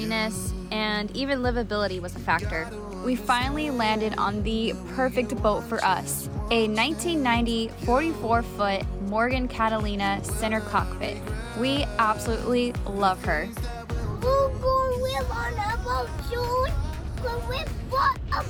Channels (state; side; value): identical; both; correlation 1.00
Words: and even livability was a factor. We finally landed on the perfect boat for us, a 1990 44-foot Morgan Catalina center cockpit. We absolutely love her. We're going to live on a boat soon. Because we bought a